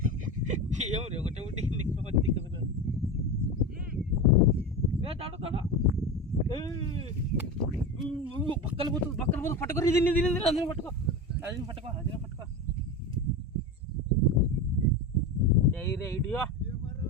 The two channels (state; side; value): normal; both; correlation 0.24